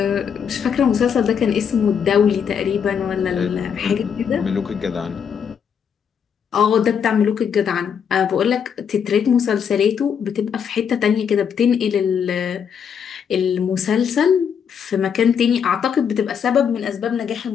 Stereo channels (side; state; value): right; quieter; 7.4 dB